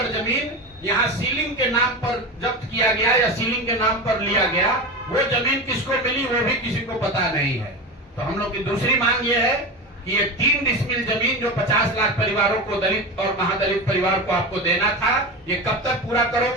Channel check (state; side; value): normal; both; correlation 0.23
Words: जमीन यहाँ सीलिंग के नाम पर जब्त किया गया या सीलिंग के नाम पर लिया गया, वो जमीन किसको मिली वो भी किसी को पता नहीं है। तो हम लोग की दूसरी मांग ये है कि ये 3 डिसमिल जमीन जो 50 लाख परिवारों को, दलित और महादलित परिवार को आपको देना था, ये कब तक पूरा